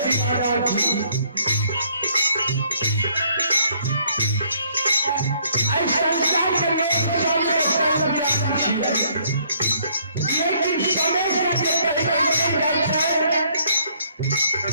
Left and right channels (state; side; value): inverted; both; correlation -0.65